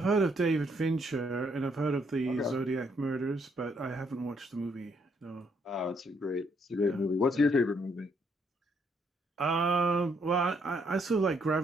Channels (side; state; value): both; normal; correlation 0.72